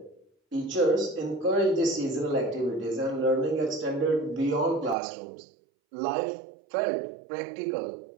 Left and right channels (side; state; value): left; drops out; at 5.0 s